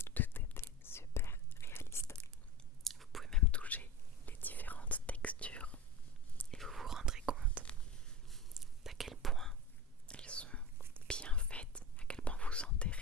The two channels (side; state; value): both; normal; correlation 0.31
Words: tout était super réaliste. Vous pouvez même toucher les différentes textures et vous vous rendrez compte d'à quel point elles sont bien faites, à quel point vous sentez